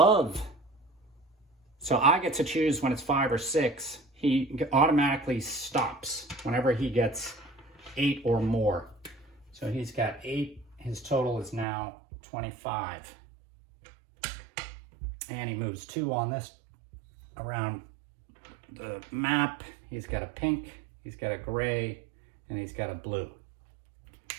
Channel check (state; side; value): drops out; left; at 11.7 s